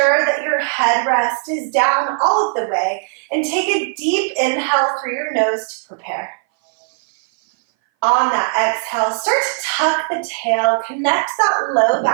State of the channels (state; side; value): silent; left; 60 dB below the other